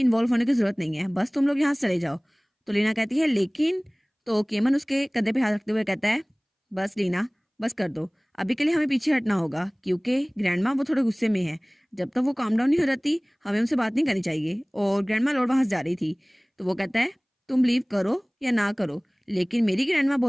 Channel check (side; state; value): both; identical; correlation 1.00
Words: होने की जरूरत नहीं है, बस तुम लोग यहाँ से चले जाओ। तो लीना कहती है लेकिन, तो केमन उसके कंधे पे हाथ रखते हुए कहता है, बस लीना बस कर दो, अभी के लिए हमें पीछे हटना होगा, क्योंकि ग्रैंडमा वो थोड़े गुस्से में है, जब तक वो काम डाउन नहीं हो जाती हमें उनसे बात नहीं करनी चाहिए। और ग्रैंडमा लौट वहां से जा रही थी। तो वो कहता है, तुम लीव करो या ना करो, लेकिन मेरी ग्रैंडमा